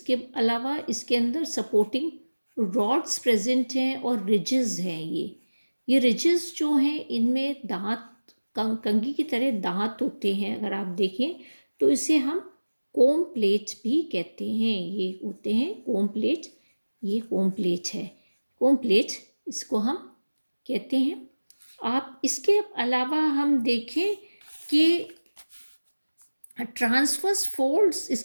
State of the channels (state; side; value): inverted; both; correlation -1.00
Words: अलावा इसके अंदर सपोर्टिंग रॉड्स प्रेजेंट हैं और रिजेस हैं ये। ये रिजेस जो हैं इनमें दांत कंघी की तरह दांत होते हैं, अगर आप देखें तो इसे हम कोम प्लेट भी कहते हैं। ये होते हैं कोम प्लेट, ये कोम प्लेट है, कोम प्लेट इसको हम कहते हैं। आप इसके अलावा हम देखें कि ट्रांसवर्स फोल्ड्स,